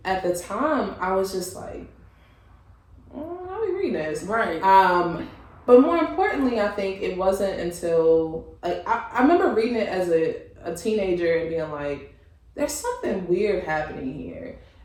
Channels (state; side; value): identical; both; correlation 1.00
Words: at the time, I was just like, how are we reading this? Right. But more importantly, I think it wasn't until, like, I remember reading it as a teenager and being like, there's something weird happening here.